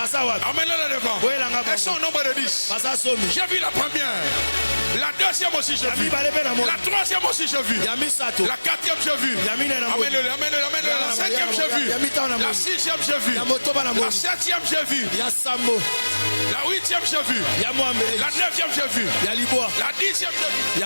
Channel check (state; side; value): inverted; both; correlation -1.00